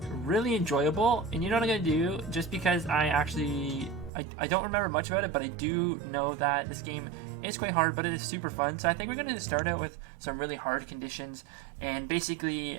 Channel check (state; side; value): drops out; left; at 4.1 s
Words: really enjoyable, and you know what I'm gonna do, just because I don't remember much about it, but I do know that this game is quite hard, but it is super fun. So I think we're gonna start out with some really hard conditions, and